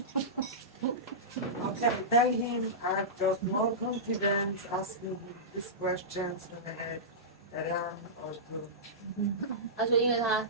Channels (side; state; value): both; normal; correlation -0.17